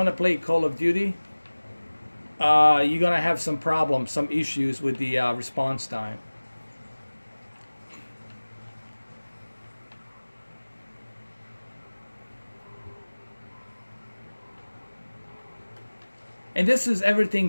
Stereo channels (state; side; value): inverted; both; correlation -1.00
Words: to play Call of Duty, you're going to have some problems, some issues with the response time. And this is everything